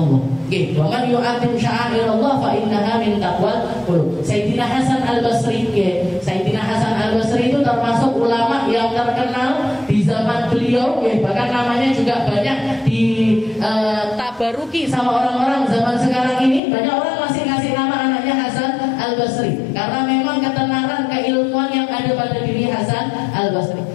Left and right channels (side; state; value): right; drops out; at 16.6 s